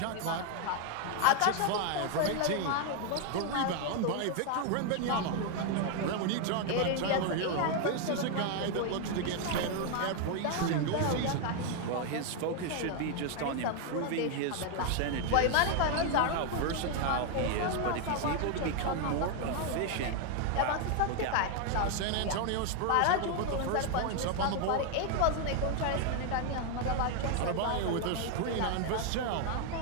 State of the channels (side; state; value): both; different; correlation 0.01